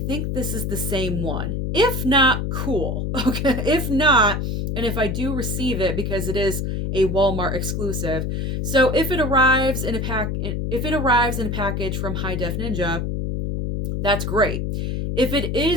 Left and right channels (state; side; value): noise; left; hum, 2 dB below the sound